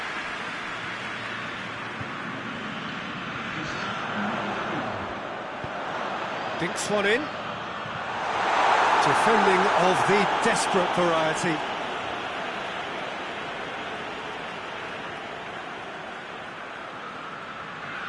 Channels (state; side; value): identical; both; correlation 1.00